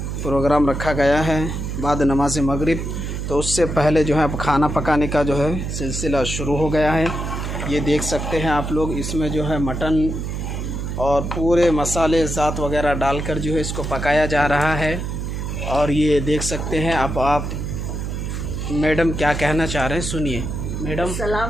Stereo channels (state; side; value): noise; right; hum, 4 dB below the sound